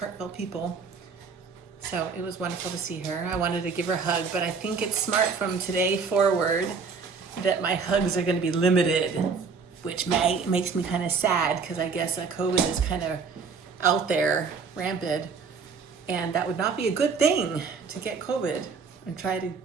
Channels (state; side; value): quieter; left; 5.3 dB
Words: people. So it was wonderful to see her. I wanted to give her a hug, but I think it's smart from today forward that my hugs are going to be limited, which makes me kind of sad because I guess COVID is kind of out there, rampant, and that would not be a good thing to get COVID and try to